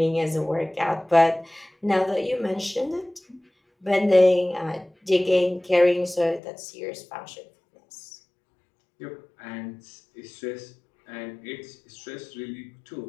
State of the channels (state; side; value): drops out; right; at 6.4 s